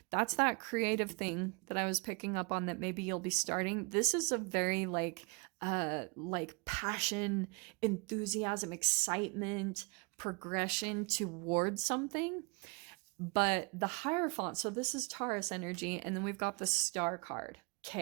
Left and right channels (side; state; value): left; quieter; 31.2 dB